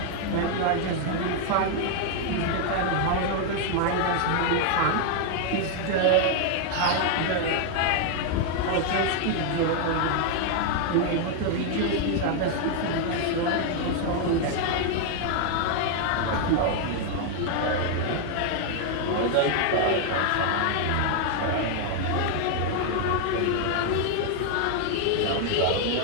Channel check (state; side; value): different; both; correlation 0.00